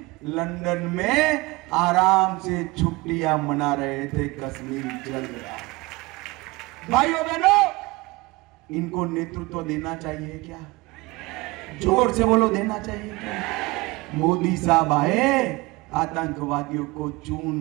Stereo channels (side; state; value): left; quieter; 22.8 dB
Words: लंदन में आराम से छुट्टियां मना रहे थे, कश्मीर चल रहा। भाइयों बहनों, इनको नेतृत्व देना चाहिए क्या? जोर से बोलो, देना चाहिए क्या? मोदी साहब आए, आतंकवादियों को